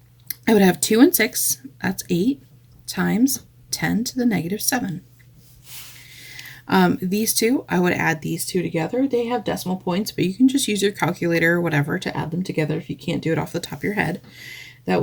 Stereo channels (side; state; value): both; identical; correlation 1.00